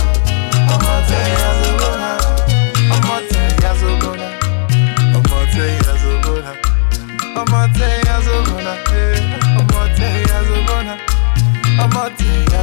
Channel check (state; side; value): silent; right; digital silence